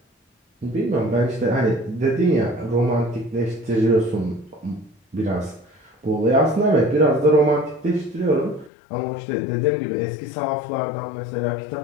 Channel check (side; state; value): right; drops out; at 8.7 s